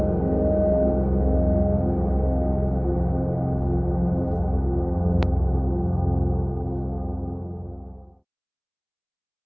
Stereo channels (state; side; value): identical; both; correlation 1.00